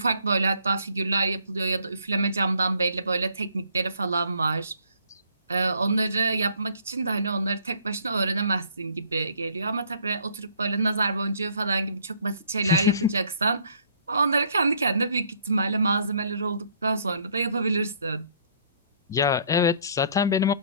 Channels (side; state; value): both; inverted; correlation -0.61